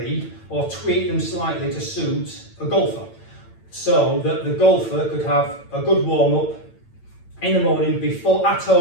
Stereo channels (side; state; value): right; late; 8.9 ms